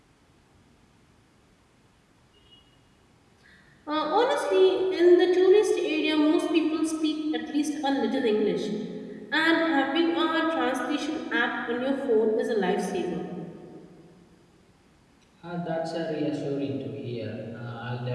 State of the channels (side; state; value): both; identical; correlation 1.00